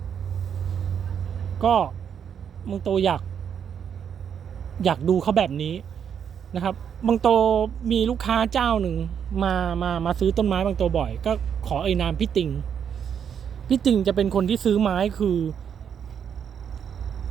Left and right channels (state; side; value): quieter; left; 8.0 dB